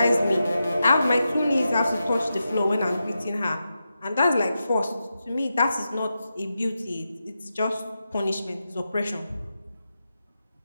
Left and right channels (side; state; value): both; inverted; correlation -0.89